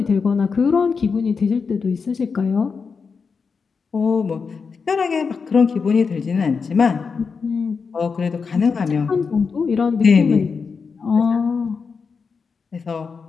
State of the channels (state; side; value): quieter; right; 5.3 dB